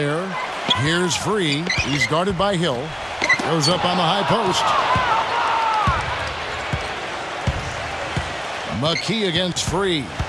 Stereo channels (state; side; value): identical; both; correlation 1.00